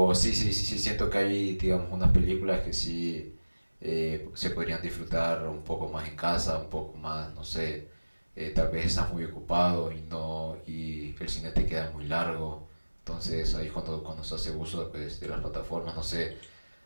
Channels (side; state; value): both; inverted; correlation -1.00